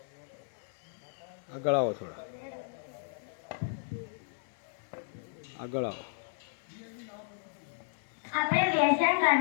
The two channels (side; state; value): right; silent; 55 dB below the other